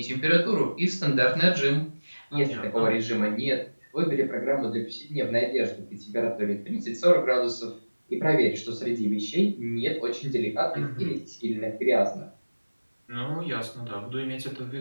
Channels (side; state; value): both; inverted; correlation -1.00